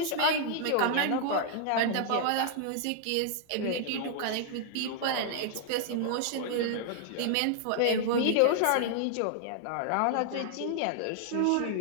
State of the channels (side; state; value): both; different; correlation -0.01